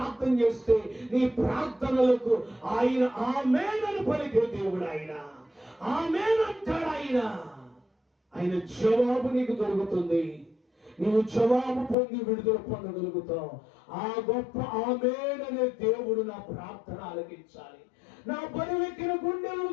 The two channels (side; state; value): right; drops out; at 12.0 s